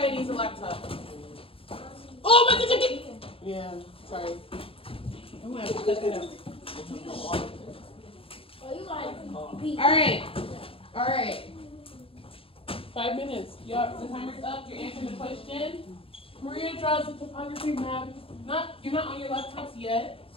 needs a laptop. Oh, my ticket! Yeah, sorry. I'm gonna have to cut that out. All right. 5 minutes. Y'all, the timer's up. You're answering the question. Maria draws a topography map. You're not on your laptops yet.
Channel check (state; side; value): late; right; 0.27 ms